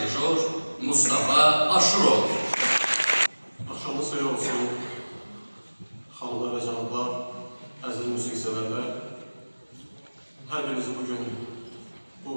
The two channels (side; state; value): both; inverted; correlation -1.00